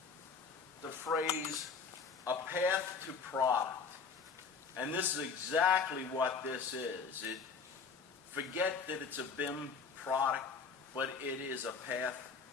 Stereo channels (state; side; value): quieter; right; 5.4 dB